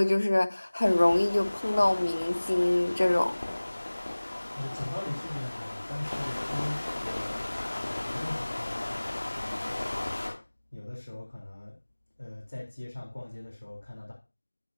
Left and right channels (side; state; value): both; inverted; correlation -1.00